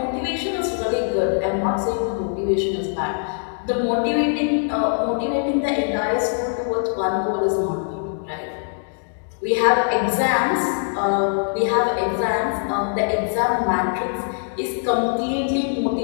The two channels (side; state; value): right; silent; digital silence